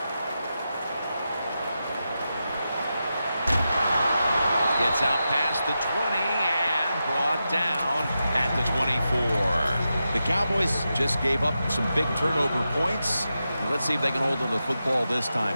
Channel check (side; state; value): both; inverted; correlation -0.89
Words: Gets out past the 20 and brought down at the 24. The Cowboys just gave up some big turnover points. Let's see if they can hold on to the football this time,